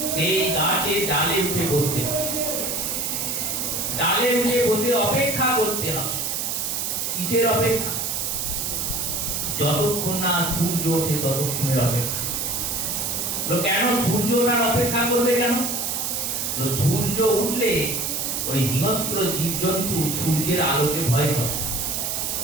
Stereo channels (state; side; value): noise; right; hiss, 1 dB below the sound